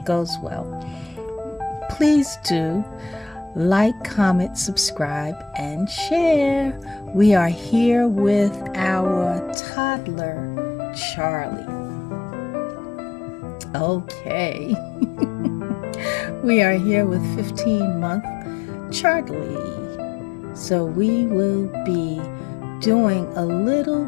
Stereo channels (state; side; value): drops out; right; at 9.6 s